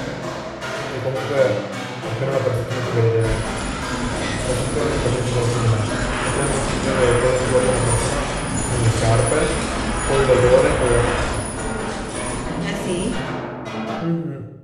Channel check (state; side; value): identical; both; correlation 1.00